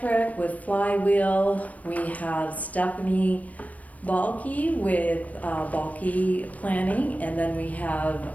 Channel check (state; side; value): late; right; 0.070 ms